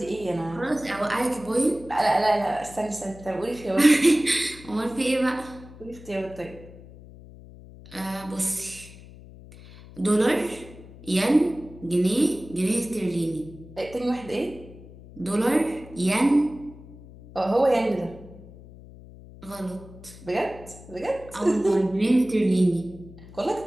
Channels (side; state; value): left; noise; hum, 19 dB below the sound